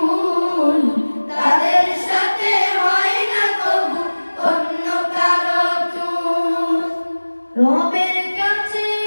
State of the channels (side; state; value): both; inverted; correlation -1.00